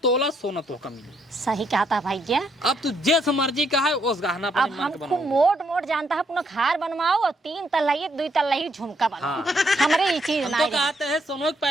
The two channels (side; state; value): both; normal; correlation 0.74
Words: तोला सोना तो का मिले। सही कहा था भाई जी। अब तू जैस मर्जी का है उस गहना पर अब हमको मोट मोट जानता है अपना खार बनवाओ और 3 तल्ला 2 तल्ला झुमका बनाओ। हमारे ये चीज हम ना तो कहते हैं सोनो के